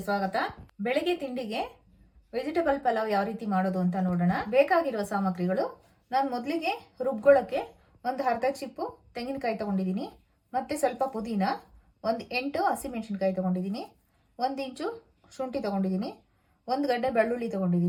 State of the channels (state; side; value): identical; both; correlation 1.00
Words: ಸ್ವಾಗತ. ಬೆಳಗ್ಗೆ ತಿಂಡಿಗೆ ವೆಜಿಟೇಬಲ್ ಪಲಾವ್ ಯಾವ ರೀತಿ ಮಾಡೋದು ಅಂತ ನೋಡೋಣ. ಬೇಕಾಗಿರುವ ಸಾಮಗ್ರಿಗಳು, ನಾನು ಮೊದಲಿಗೆ ರುಬ್ಕೊಳ್ಳೋಕ್ಕೆ ಒಂದು ಅರ್ಧ ಚಿಪ್ಪು ತೆಂಗಿನಕಾಯಿ ತಗೊಂಡಿದ್ದೀನಿ, ಮತ್ತೆ ಸ್ವಲ್ಪ ಪುದೀನ, ಒಂದು 8 ಹಸಿಮೆಣಸಿನಕಾಯಿ ತಗೊಂಡಿದ್ದೀನಿ, 1 ಇಂಚು ಶುಂಠಿ ತಗೊಂಡಿದ್ದೀನಿ, 1 ಗಡ್ಡೆ ಬೆಳ್ಳುಳ್ಳಿ